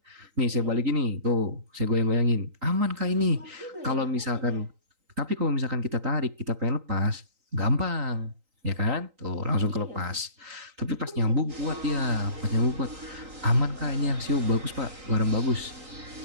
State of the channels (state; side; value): late; left; 3.8 ms